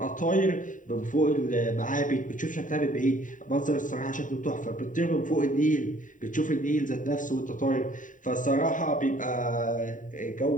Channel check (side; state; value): right; late; 0.38 ms